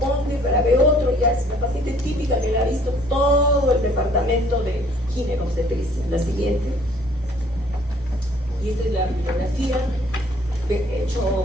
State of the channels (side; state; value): both; normal; correlation 0.58